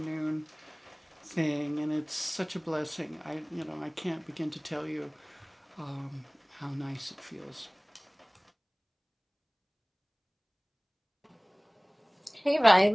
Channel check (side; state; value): both; identical; correlation 1.00